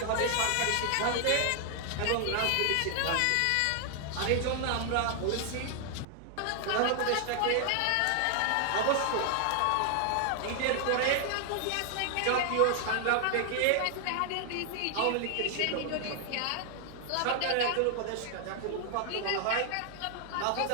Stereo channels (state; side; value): different; both; correlation 0.00